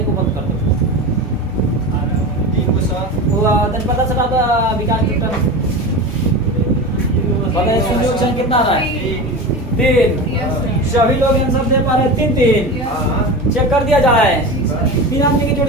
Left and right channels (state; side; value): normal; both; correlation 0.27